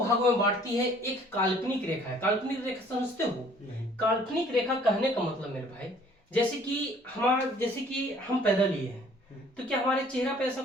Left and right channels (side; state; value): both; normal; correlation 0.56